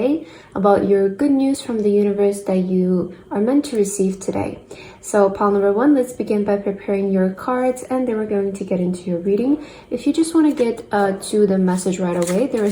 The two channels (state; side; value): identical; both; correlation 1.00